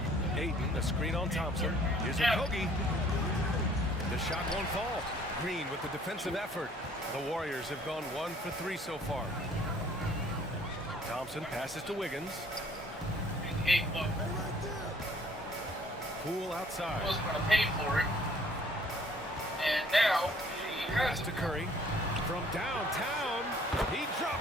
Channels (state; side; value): normal; both; correlation 0.58